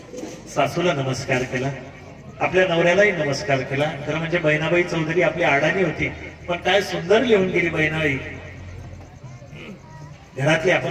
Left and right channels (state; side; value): identical; both; correlation 1.00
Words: सासूला नमस्कार केला, आपल्या नवऱ्यालाही नमस्कार केला. खरं म्हणजे बहिणाबाई चौधरी आपली अडाणी होती, पण काय सुंदर लिहून गेली बहिणाबाई. घरातली